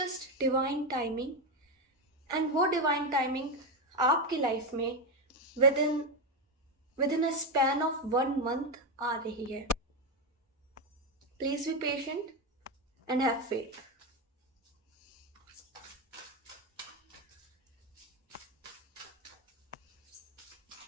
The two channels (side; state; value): both; normal; correlation 0.10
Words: divine timing. And वो डिवाइन टाइमिंग आपकी लाइफ में with in a span of 1 month आ रही है. Please be patient and have faith.